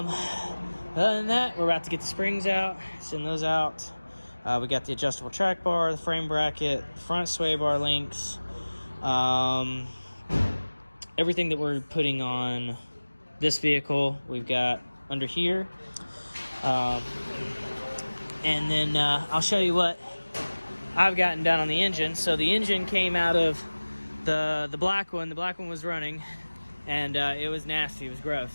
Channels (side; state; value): both; inverted; correlation -1.00